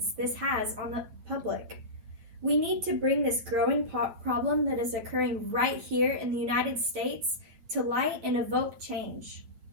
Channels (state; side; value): late; left; 9.2 ms